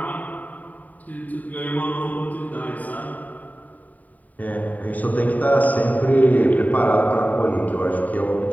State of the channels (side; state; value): right; late; 0.075 ms